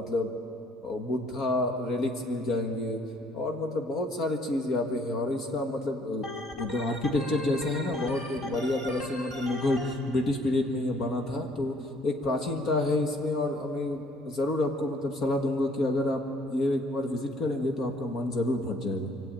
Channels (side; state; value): both; normal; correlation 0.61